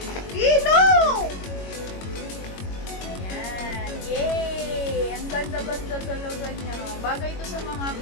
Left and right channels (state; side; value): late; right; 22 ms